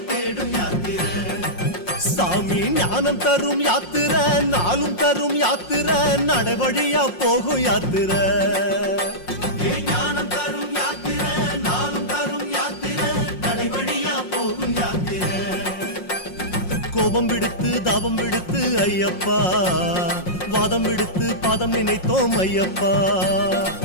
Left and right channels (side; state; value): right; late; 5.6 ms